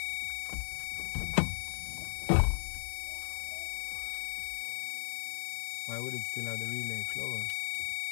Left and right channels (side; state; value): right; silent; digital silence